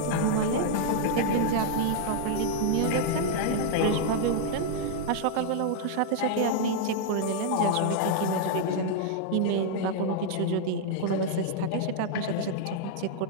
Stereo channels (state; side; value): different; both; correlation -0.01